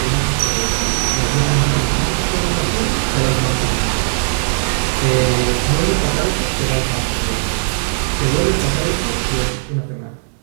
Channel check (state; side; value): silent; left; digital silence